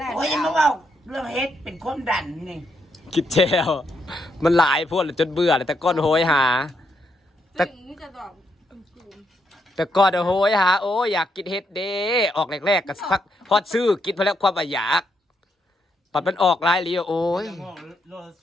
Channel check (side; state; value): both; normal; correlation 0.78